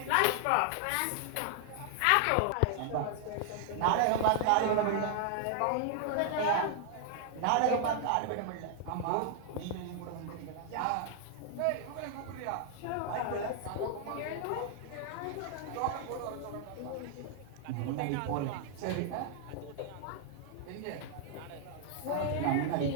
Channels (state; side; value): different; both; correlation 0.00